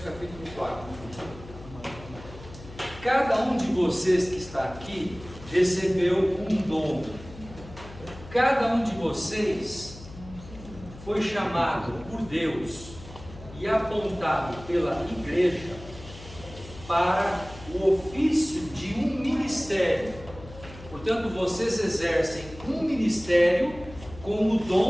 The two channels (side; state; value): left; noise; hum, 16 dB below the sound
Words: capítulo 4. Cada um de vocês que está aqui recebeu um dom. Cada um de vocês foi chamado por Deus e apontado pela igreja para o ofício de um ministério. Portanto, vocês exercem um ministério com o